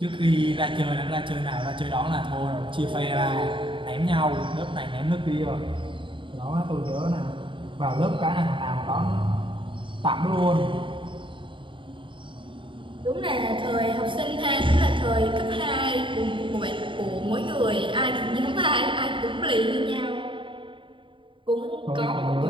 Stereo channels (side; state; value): left; late; 0.24 ms